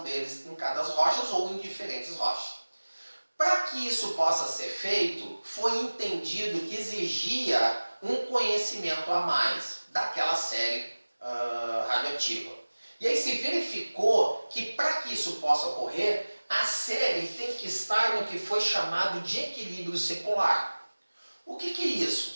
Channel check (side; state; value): both; inverted; correlation -1.00